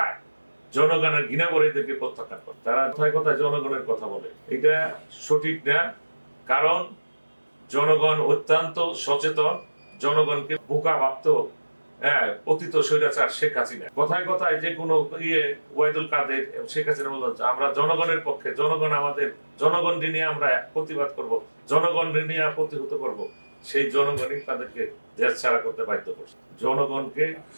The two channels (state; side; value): inverted; both; correlation -1.00